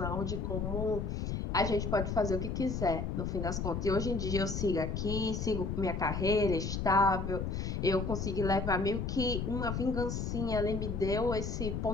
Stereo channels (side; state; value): left; noise; rumble, 2 dB below the sound